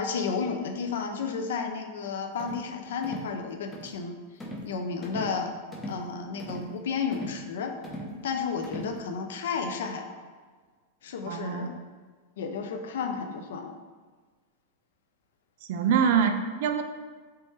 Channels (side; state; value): both; normal; correlation -0.14